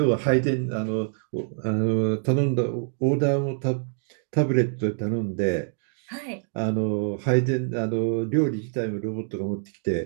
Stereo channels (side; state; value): left; silent; digital silence